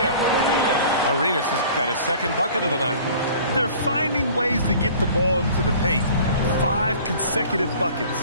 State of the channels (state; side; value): inverted; both; correlation -0.47